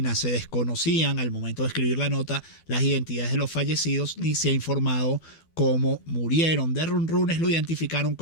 Se desconocían al momento de escribir la nota las identidades de los fallecidos ni se ha informado cómo murieron. De Runrunes lo identificaron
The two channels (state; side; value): late; right; 12 ms